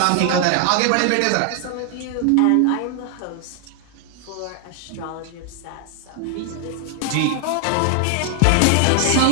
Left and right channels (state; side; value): different; both; correlation 0.00